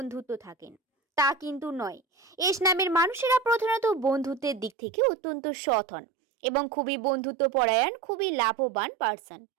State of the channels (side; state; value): left; drops out; at 4.7 s